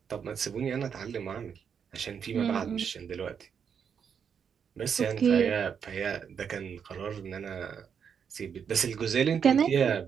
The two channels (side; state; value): left; quieter; 7.2 dB